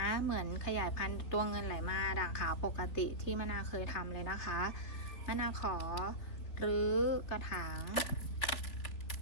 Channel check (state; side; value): late; right; 3.7 ms